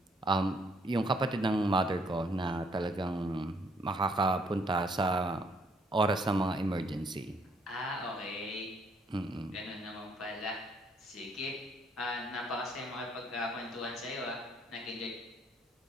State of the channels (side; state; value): both; normal; correlation 0.67